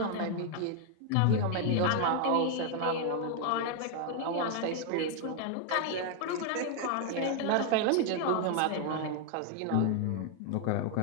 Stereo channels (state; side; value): different; both; correlation 0.00